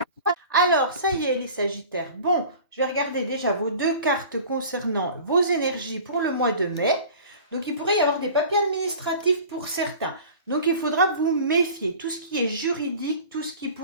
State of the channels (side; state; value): both; inverted; correlation -0.41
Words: Alors, ça y est, les Sagittaires. Bon, je vais regarder déjà vos 2 cartes concernant vos énergies pour le mois de mai. Donc, il pourrait y avoir des papiers administratifs pour certains. Donc, il faudra vous méfier. Tout ce qui est juridique, tout ce qui